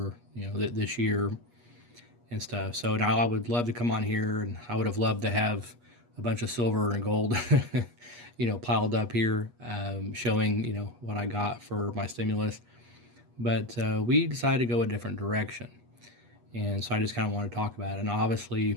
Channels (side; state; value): left; late; 8.3 ms